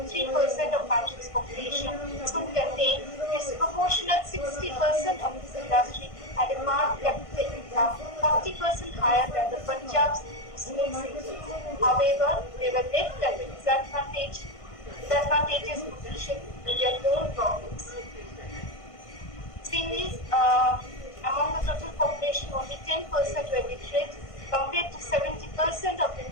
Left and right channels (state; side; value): late; right; 1.5 ms